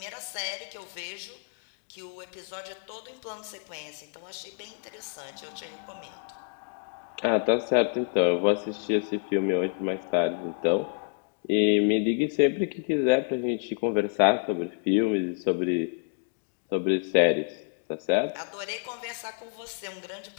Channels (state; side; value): silent; right; 59 dB below the other